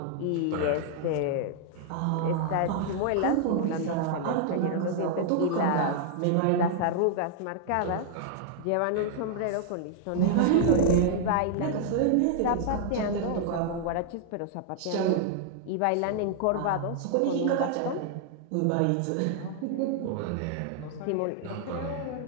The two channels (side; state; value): both; different; correlation -0.01